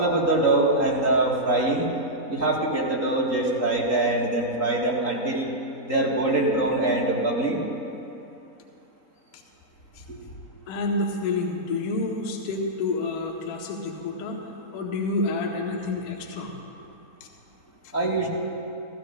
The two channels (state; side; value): late; right; 3.8 ms